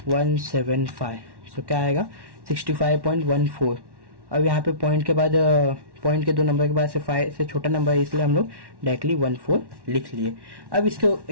175, सो क्या आएगा 65.14। अब यहाँ पे पॉइंट के बाद पॉइंट के 2 नंबर के बाद से 5 से छोटा नंबर है, इसलिए हम लोग डायरेक्टली 14 लिख लिए। अब इसको,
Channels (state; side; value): late; left; 1.1 ms